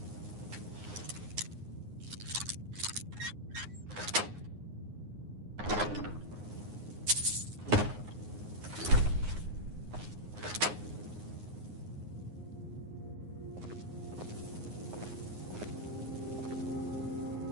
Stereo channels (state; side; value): late; left; 9.6 ms